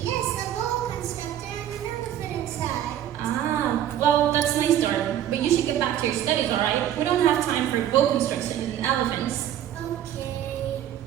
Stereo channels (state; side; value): quieter; left; 11.1 dB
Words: Yes, a boa constrictor and an elephant inside. Ah, well, that's a nice story. But you should get back to your studies, alright? We don't have time for boa constrictions and elephants. Okay.